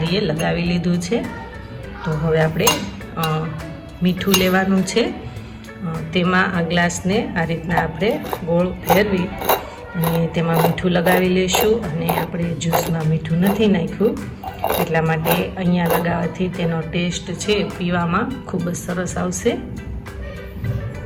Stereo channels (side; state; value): both; identical; correlation 1.00